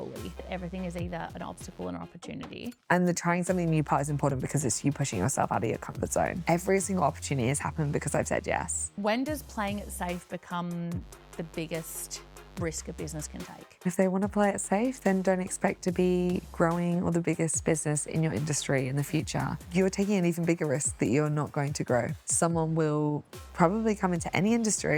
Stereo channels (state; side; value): identical; both; correlation 1.00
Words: Everything is either an obstacle or an opportunity. And the trying something new part is important because it's you pushing yourself out of your comfort zone. Every single opportunity has happened because I've said yes. When does playing it safe become the biggest risk a business can take? If they want to play it safe, then don't expect to be growing or the biggest business in your industry in the future. You're taking an even bigger risk that you're not going to grow. Someone will probably come into any